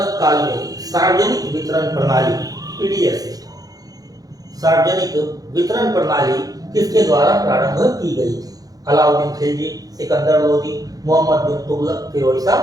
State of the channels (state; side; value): late; left; 0.18 ms